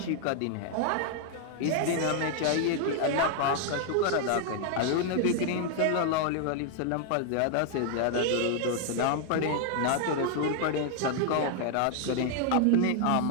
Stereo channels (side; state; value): both; different; correlation 0.00